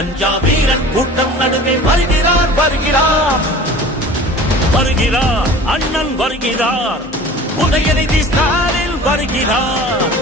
வீரன் கூட்டம் நடுவே வருகிறார் வருகிறார் வருகிறார். அண்ணன் வருகிறார். உதயநிதி ஸ்டாலின் வருகிறார்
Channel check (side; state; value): both; normal; correlation 0.41